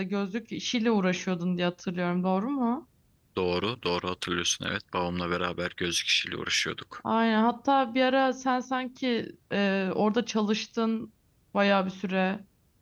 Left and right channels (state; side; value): identical; both; correlation 1.00